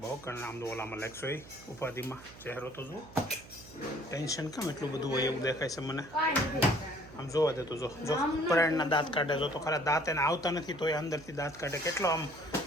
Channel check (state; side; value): noise; right; hum, 19 dB below the sound